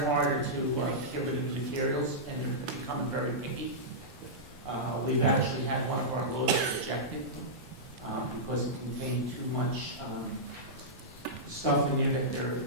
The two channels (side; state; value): both; normal; correlation -0.13